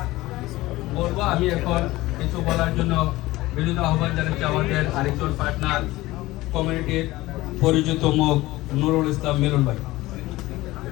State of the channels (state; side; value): quieter; right; 18.4 dB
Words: আমি এখন কিছু বলার জন্য বিনীত আহ্বান জানাচ্ছি আমাদের আরেকজন পার্টনার, কমিউনিটির পরিচিত মুখ নুরুল ইসলাম মিলন ভাই।